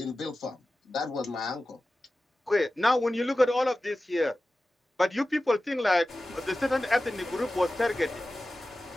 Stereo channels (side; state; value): both; normal; correlation 0.95